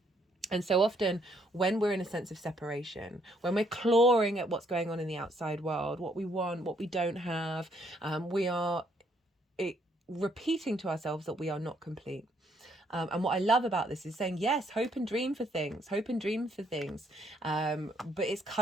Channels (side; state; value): both; normal; correlation 0.69